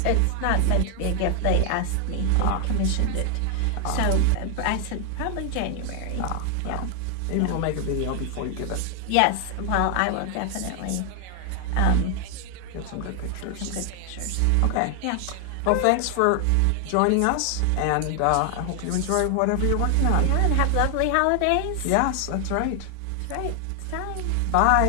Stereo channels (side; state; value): both; different; correlation 0.00